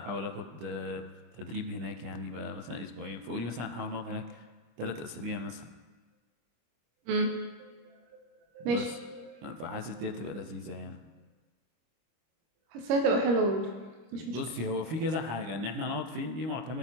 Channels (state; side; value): late; left; 25 ms